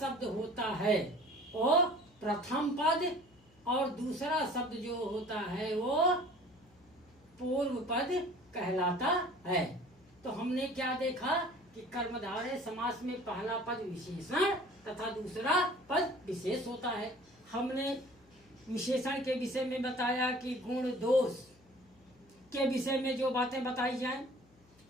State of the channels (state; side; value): noise; left; hum, 29 dB below the sound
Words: होता है वो प्रथम पद और दूसरा शब्द जो होता है वो पूर्व पद कहलाता है। तो हमने क्या देखा कि कर्मधारय समास में पहला पद विशेषण तथा दूसरा पद विशेष होता है। हमने विशेषण के विषय में बताया कि गुण, दोष के विषय में जो बातें बताई जाएं